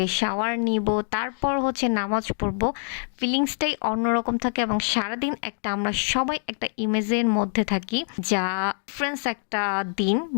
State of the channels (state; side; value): silent; right; 57 dB below the other